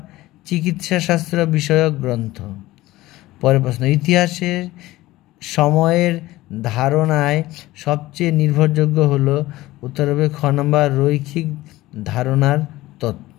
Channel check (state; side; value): quieter; right; 17.6 dB